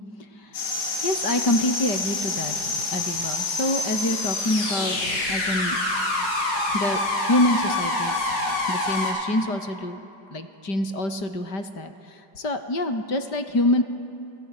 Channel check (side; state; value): right; late; 4.9 ms